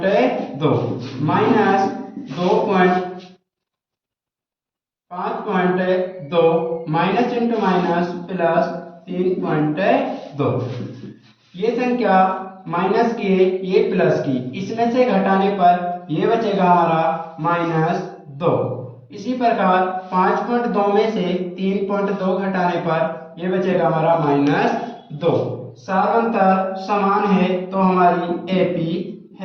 minus 5.2 minus into minus plus 3.2। ये संख्या माइनस की है, ये प्लस की, इसमें से घटाने पर ये बचेगा हमारा -2। इसी प्रकार 5.2 में से 3.2 घटाने पर ये बचेगा हमारा -2। सार्वंतर समान है तो हमारी एपी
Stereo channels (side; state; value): both; identical; correlation 1.00